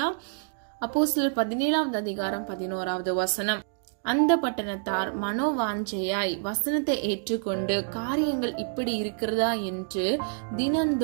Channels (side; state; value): left; silent; digital silence